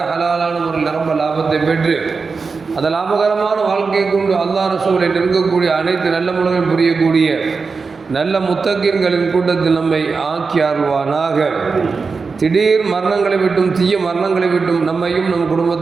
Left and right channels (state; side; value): quieter; left; 4.7 dB